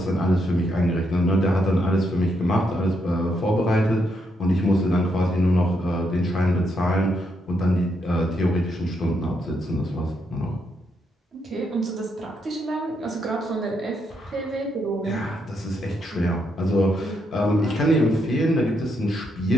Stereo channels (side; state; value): both; normal; correlation 0.78